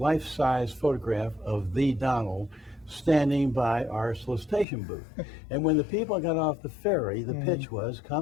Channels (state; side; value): drops out; right; at 4.7 s